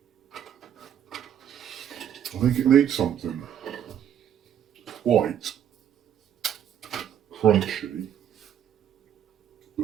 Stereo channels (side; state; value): left; quieter; 9.7 dB